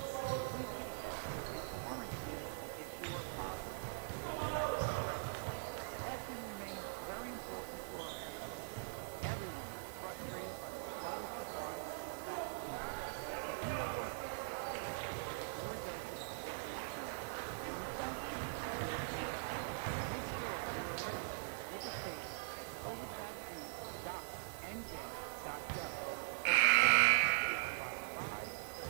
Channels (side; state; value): left; silent; digital silence